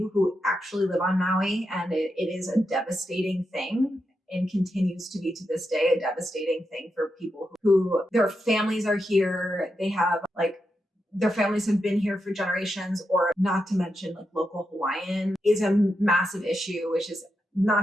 who actually live on Maui, and it is a devastating thing and continues to be to this day a devastating thing for people who their families are here. They have their families have been here for generations, or not to mention like local Hawaiian is a massive issue, which is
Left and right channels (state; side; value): normal; both; correlation 0.86